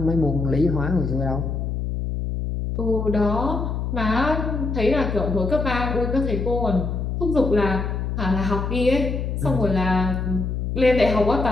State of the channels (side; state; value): left; noise; hum, 2 dB below the sound